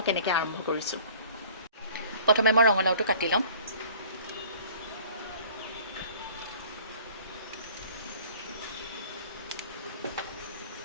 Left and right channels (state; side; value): inverted; both; correlation -0.49